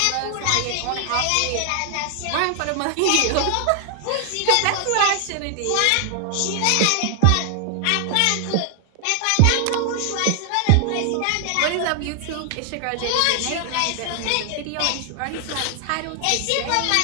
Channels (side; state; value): both; different; correlation 0.00